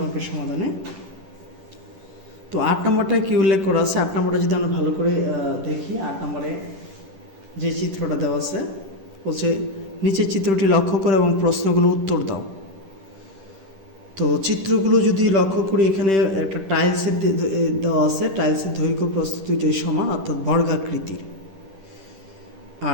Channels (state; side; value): late; left; 10 ms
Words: অঙ্কের সমাধানে। তো 8 নম্বরটা কি উল্লেখ করা আছে? 8 নম্বরটা যদি আমরা ভালো করে দেখি, 8 নম্বরে যে চিত্রটা দেওয়া আছে বলছে নিচের চিত্রটি লক্ষ্য করো এবং প্রশ্নগুলো উত্তর দাও। তো চিত্রগুলো যদি লক্ষ্য করি, এখানে একটা টাইলসের দেওয়া আছে, টাইলসের দৈর্ঘ্য প্রস্থ দুইটাই সমান অর্থাৎ বর্গাকৃতির।